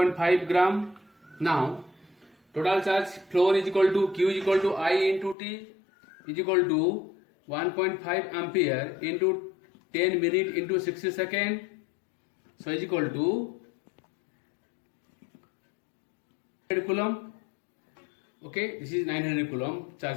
gram. Now total charge flown is equal to Q is equal to I into T is equal to 1.5 ampere into 10 minute into 60 second. So is equal to 900 coulomb. Okay, this is 900 coulomb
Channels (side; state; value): right; drops out; at 5.4 s